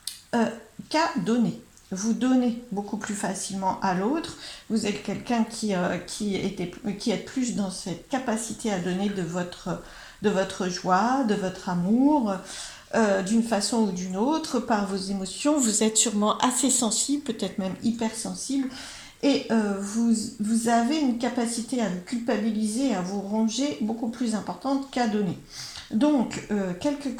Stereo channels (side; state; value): both; identical; correlation 1.00